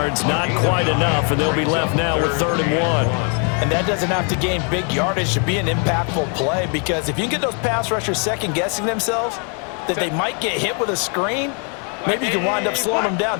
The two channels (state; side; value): quieter; right; 38.9 dB